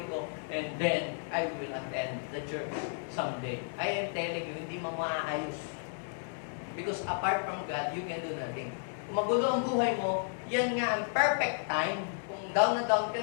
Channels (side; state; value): right; silent; 56 dB below the other